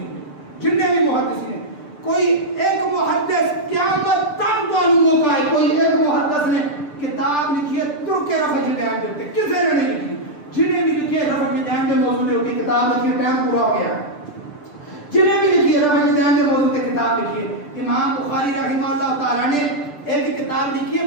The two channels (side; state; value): right; late; 6.7 ms